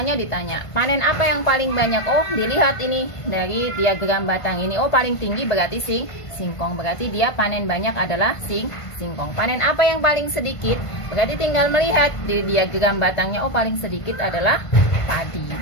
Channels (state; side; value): late; right; 1.5 ms